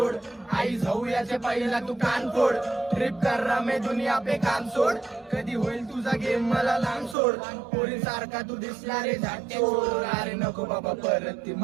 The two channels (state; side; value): drops out; left; at 7.2 s